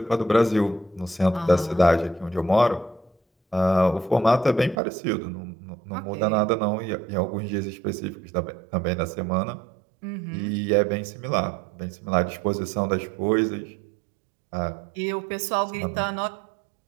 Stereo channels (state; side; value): drops out; left; at 4.8 s